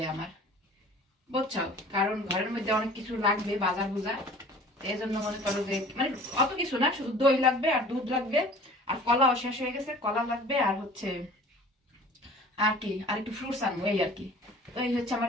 আমার, বুঝছো? কারণ ঘরের মধ্যে অনেক কিছু লাগবে, বাজার বুজার। এই জন্য মনে করো যে মানে অত কিছু না, শুধু দই লাগবে আর দুধ লাগবে, আর কলাও শেষ হয়ে গেছে, কলা লাগবে, আর হচ্ছে আর কি, আর একটু ফ্রুটস আনবো, এই আর কি। তো এই হচ্ছে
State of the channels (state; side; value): normal; both; correlation 0.46